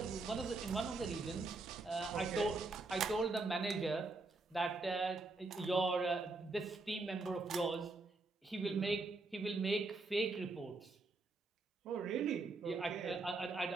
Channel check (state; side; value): quieter; left; 3.5 dB